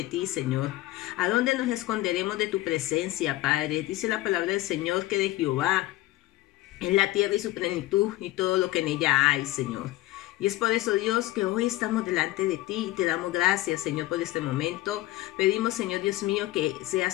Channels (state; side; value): quieter; right; 17.1 dB